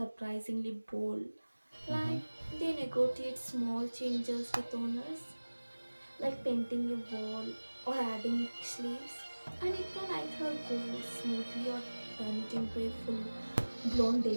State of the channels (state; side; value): inverted; both; correlation -1.00